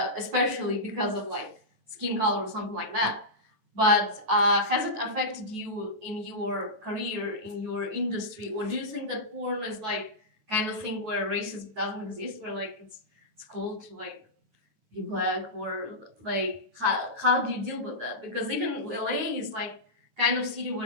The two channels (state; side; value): late; left; 9.2 ms